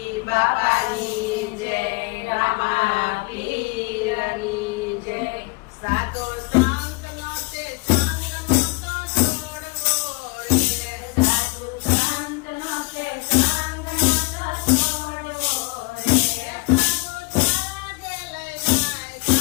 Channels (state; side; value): quieter; right; 27.5 dB